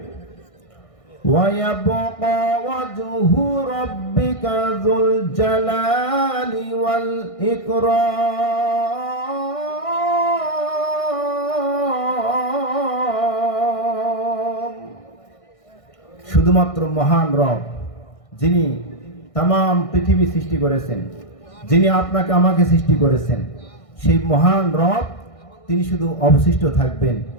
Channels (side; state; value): right; late; 1.6 ms